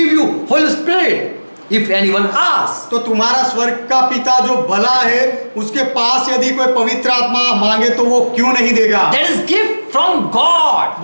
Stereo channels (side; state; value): both; inverted; correlation -1.00